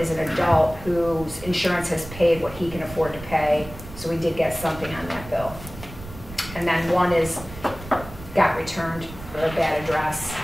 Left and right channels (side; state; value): right; noise; rumble, 14 dB below the sound